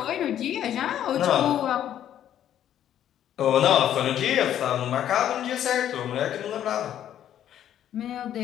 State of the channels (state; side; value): quieter; right; 10.8 dB